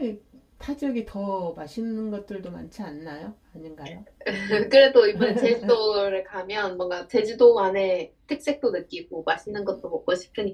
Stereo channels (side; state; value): both; identical; correlation 1.00